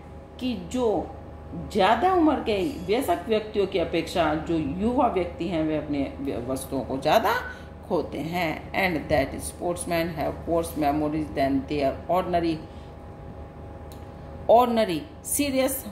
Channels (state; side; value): identical; both; correlation 1.00